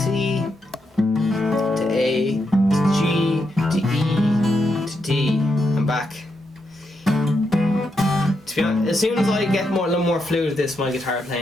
to A to G to E to D and back. To be honest, as soon as I get a little more fluid at this, my guitar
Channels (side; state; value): both; normal; correlation 0.82